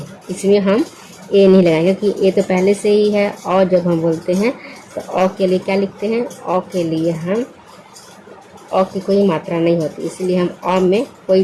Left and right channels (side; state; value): both; identical; correlation 1.00